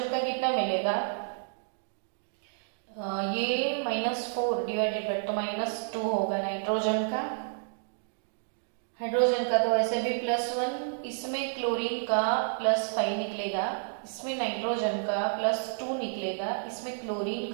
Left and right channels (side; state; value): left; silent; digital silence